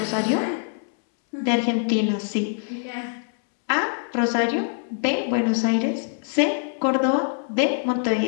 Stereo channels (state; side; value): silent; right; 63 dB below the other